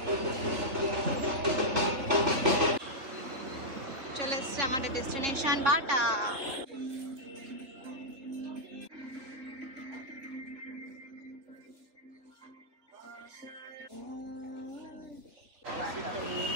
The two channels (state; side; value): late; left; 3.4 ms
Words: চলে এসছে আমাদের destination Bata.